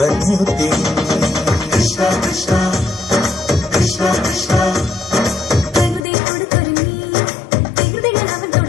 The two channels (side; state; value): right; drops out; at 6.0 s